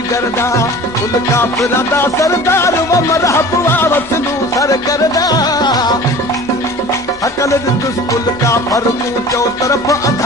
दा कुल काफिरां दा सरदार व मरहब वसलू सर करदा अकल दुस्कुल का फरकू चो तरफ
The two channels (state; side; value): normal; both; correlation 0.41